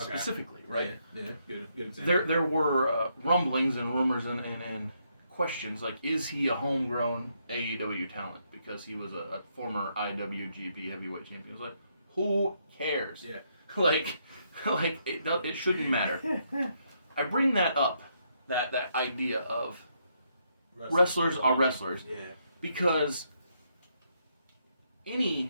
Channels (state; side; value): inverted; both; correlation -0.76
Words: right? Yeah, good example. There were rumblings and rumors and questions like, is he a homegrown AEW talent because he was a former IWGP heavyweight champion? It was like, who cares? Yeah. like it shouldn't matter. I bring that up, that idea of wrestlers are wrestlers, because